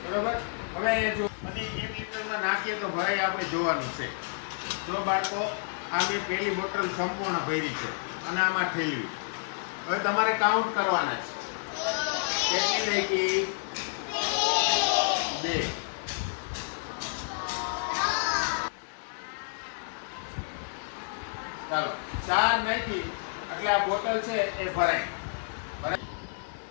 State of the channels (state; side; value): silent; right; 58 dB below the other